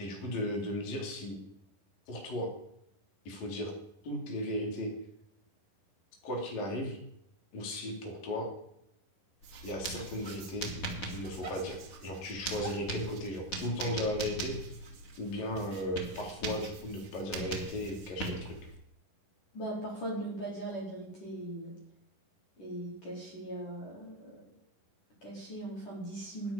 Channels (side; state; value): right; late; 10 ms